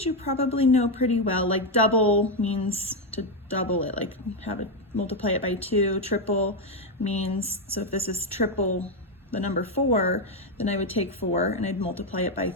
you probably know pretty well. Like double means to double it, like multiply it by 2. Triple means, so if this is triple the number 4, then I would take 4 and I'd multiply it by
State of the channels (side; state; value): both; normal; correlation 0.05